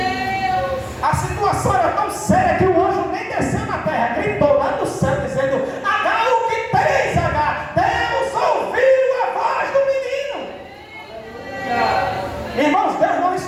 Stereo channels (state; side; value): identical; both; correlation 1.00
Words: A situação era tão séria que o anjo nem desceu na terra, gritou lá do céu dizendo: Agar, o que tens, Agar? Deus ouviu a voz do menino. Irmãos, Deus não